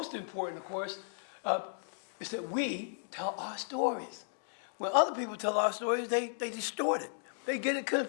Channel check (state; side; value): silent; right; digital silence